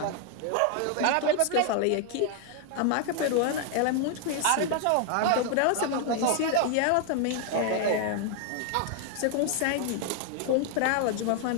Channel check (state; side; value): different; both; correlation 0.00